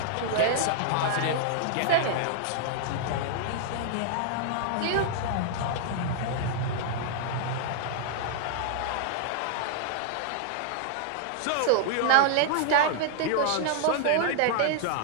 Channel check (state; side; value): different; both; correlation -0.01